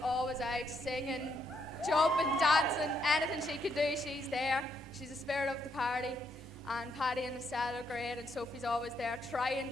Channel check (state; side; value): normal; both; correlation 0.76